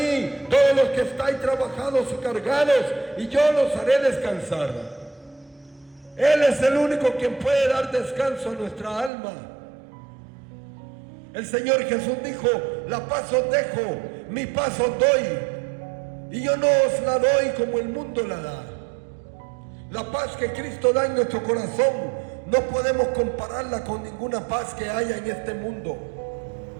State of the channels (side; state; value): left; drops out; at 9.1 s